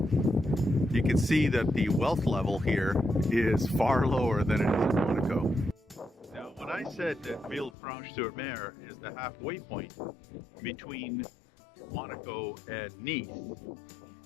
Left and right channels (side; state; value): right; drops out; at 7.8 s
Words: You can see that the wealth level here is far lower than it is in Monaco. Now, when I said that Villefranche Sur Mer is the halfway point between Monaco and Nice,